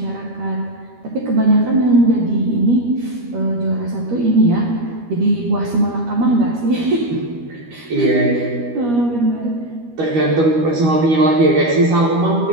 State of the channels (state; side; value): late; left; 13 ms